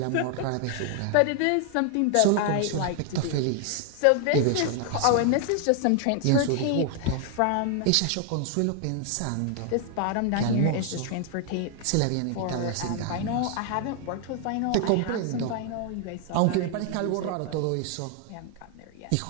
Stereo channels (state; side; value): different; both; correlation 0.00